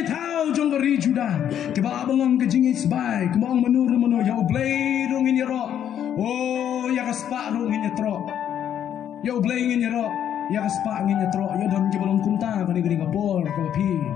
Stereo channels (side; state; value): right; quieter; 9.8 dB